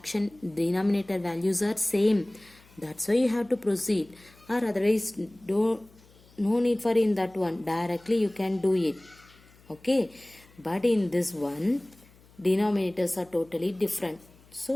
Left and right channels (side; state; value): left; noise; hum, 27 dB below the sound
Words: denominator values are same. That's why you have to proceed. Or otherwise, no need for in that one. Directly you can do it. Okay, but in this one, denominators are totally different.